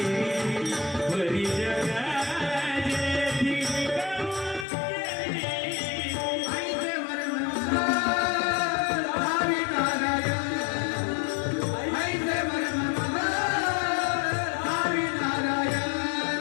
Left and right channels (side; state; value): right; drops out; at 4.7 s